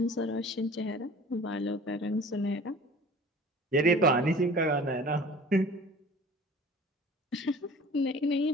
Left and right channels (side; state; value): both; normal; correlation 0.44